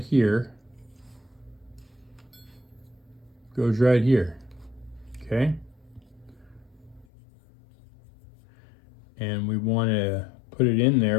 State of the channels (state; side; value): drops out; right; at 7.1 s